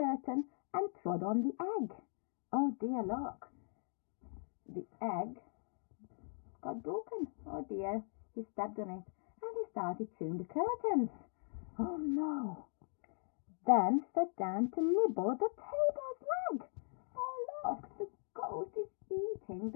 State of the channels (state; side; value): silent; right; 51 dB below the other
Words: and trod on the egg. Oh dear, look. The egg got broken. Oh dear. He stepped on it and he started chewing the curtains. Oh no. Then sat down to nibble the table's leg. Oh look, the goat is eating